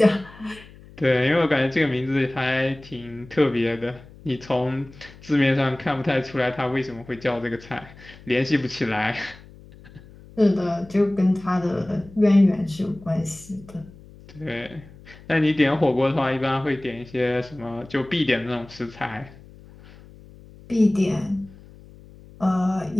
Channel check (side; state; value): left; noise; hum, 21 dB below the sound